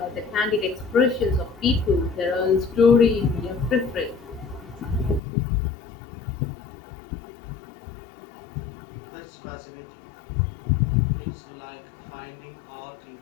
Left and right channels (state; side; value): drops out; right; at 5.2 s